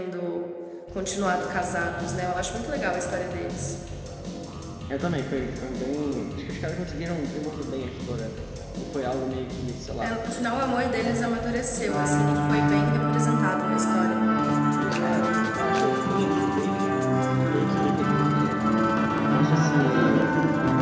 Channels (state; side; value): identical; both; correlation 1.00